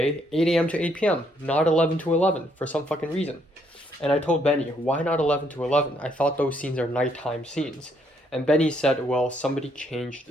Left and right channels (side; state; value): both; normal; correlation 0.71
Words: 8 a.m. to 8 p.m., not 11 to 11 for some fucking reason. And I told Benny, why not 11 to 11? I thought those scenes are nighttime scenes. And Benny said, well, somebody